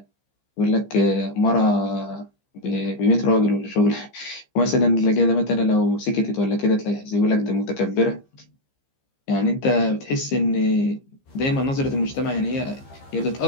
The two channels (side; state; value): right; late; 15 ms